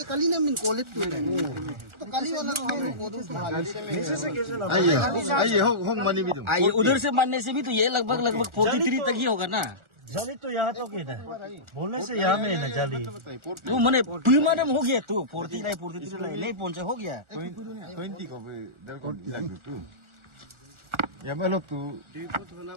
कली ना मिन कॉलेज तो कली वाला तो हम लोग aye hong mani bidum ये उधर से मानने से भी तो ये लगभग 43 तक ही होगा ना जाली तो यहाँ तो है ना बोलने से यहाँ में है ना जाली तो मैंने प्रीमाडम हो गया तू 43 नहीं पहुंचे हो गया 20 ko be dal ko lag tu ya melok tu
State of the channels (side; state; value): left; late; 1.4 ms